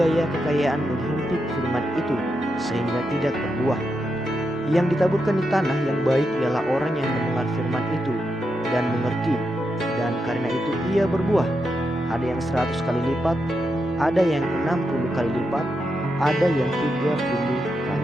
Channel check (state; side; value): normal; both; correlation 0.85